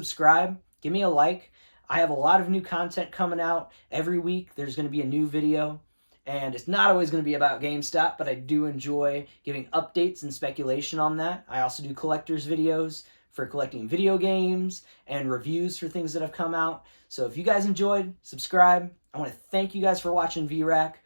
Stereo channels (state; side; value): inverted; both; correlation -1.00